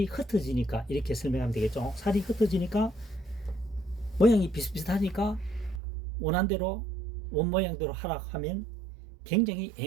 흩어지니까 이렇게 설명하면 되겠죠. 살이 흩어지니까 모양이 비슷비슷하니까 원한대로 원모양대로 하라 하면 굉장히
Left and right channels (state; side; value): drops out; left; at 5.8 s